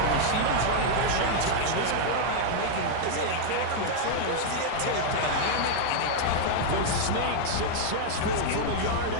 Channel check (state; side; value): different; both; correlation 0.00